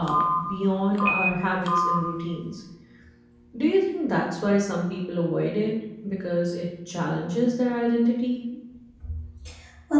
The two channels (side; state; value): both; identical; correlation 1.00